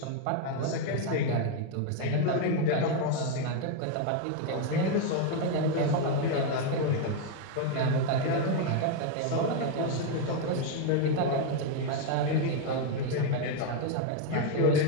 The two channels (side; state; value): both; different; correlation 0.01